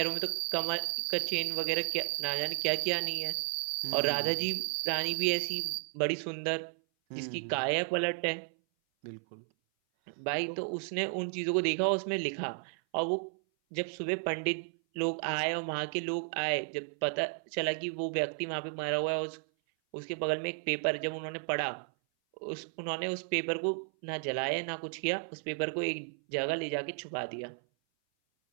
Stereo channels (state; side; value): silent; left; 56 dB below the other